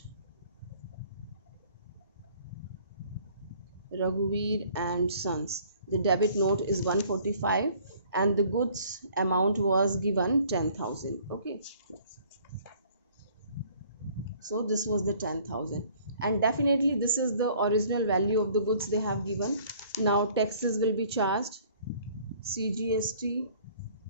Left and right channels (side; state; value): both; inverted; correlation -0.56